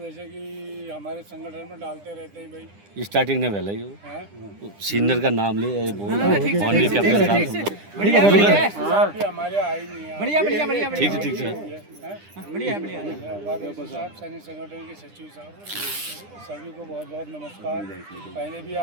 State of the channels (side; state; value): left; late; 9.9 ms